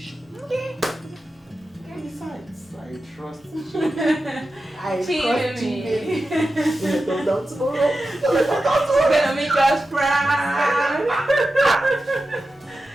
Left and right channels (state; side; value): normal; both; correlation 0.92